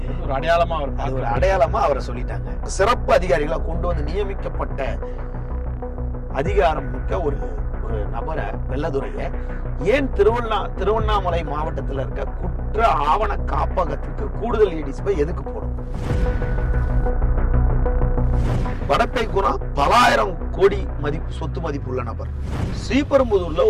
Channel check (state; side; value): identical; both; correlation 1.00